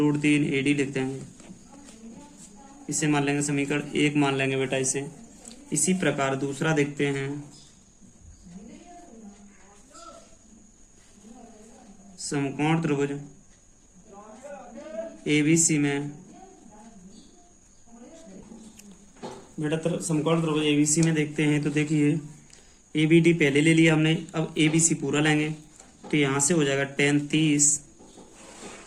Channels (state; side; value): identical; both; correlation 1.00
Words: AD लिख देंगे। इसे मान लेंगे समीकरण 1 मान लेंगे बेटा इसे। इसी प्रकार दूसरा देखते हैं। समकोण त्रिभुज ABC में बेटा, समकोण त्रिभुज ABC में देखते हैं। तो देखिए, ABD पहले ले लिया हमने, अब ABC पूरा लेंगे। तो यहाँ से हो जाएगा tan 30